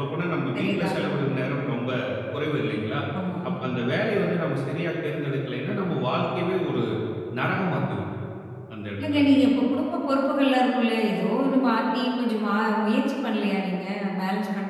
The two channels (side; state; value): both; identical; correlation 1.00